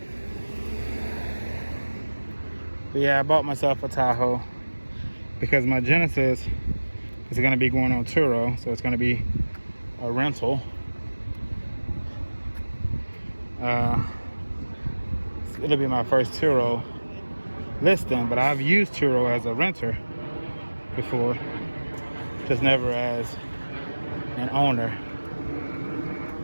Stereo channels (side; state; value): both; inverted; correlation -1.00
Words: But yeah, I bought myself a Tahoe because my Genesis is going to be going on Turo, so it's going to be a rental. It'll be my first Turo listing, but I've used Turo as a renter before, just never as an owner.